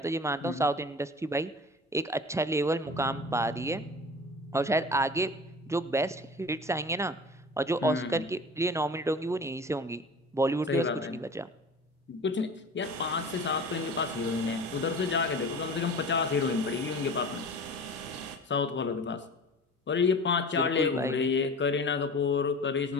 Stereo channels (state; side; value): normal; both; correlation 0.38